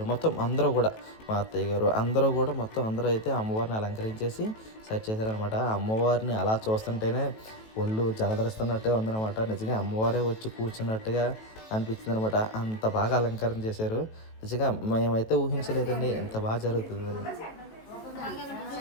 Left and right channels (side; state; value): right; late; 18 ms